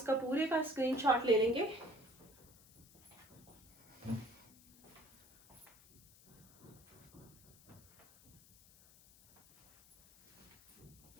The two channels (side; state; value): left; noise; hiss, 25 dB below the sound